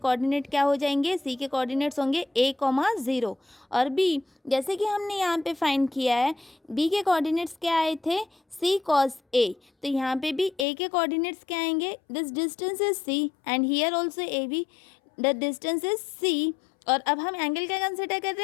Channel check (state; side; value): drops out; right; at 10.7 s